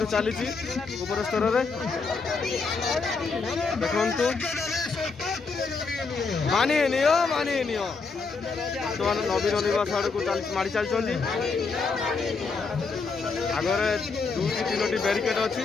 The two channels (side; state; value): right; quieter; 4.5 dB